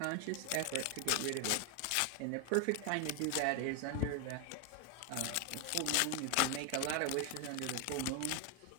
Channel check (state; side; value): different; both; correlation 0.01